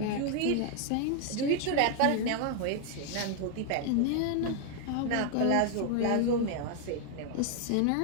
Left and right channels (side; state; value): both; different; correlation 0.00